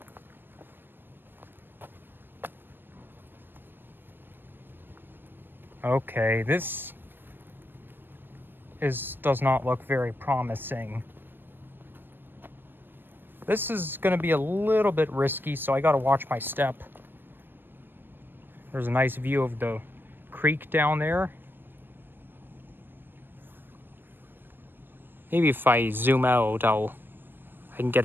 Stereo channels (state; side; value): late; left; 0.096 ms